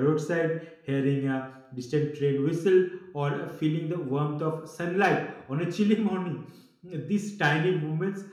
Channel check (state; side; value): identical; both; correlation 1.00